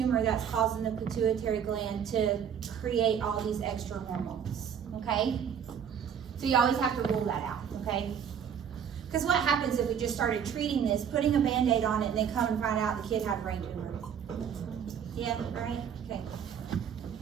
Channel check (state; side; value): quieter; left; 8.0 dB